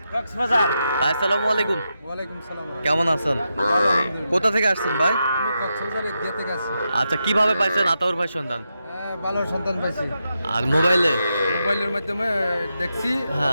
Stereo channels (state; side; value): inverted; both; correlation -0.86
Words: কক্সবাজার। ভাই আসসালামু আলাইকুম। ওয়ালাইকুম সালাম। কেমন আছেন? কোথা থেকে আসছেন ভাই? আমি কক্সবাজার এদিকে থেকে আসছি। আচ্ছা, কিভাবে পাইছেন আতাউর ভাই সন্ধান? ভালো সন্তান পাইছি। আর মোবাইলে? মোবাইলের মাধ্যমে দেখছি।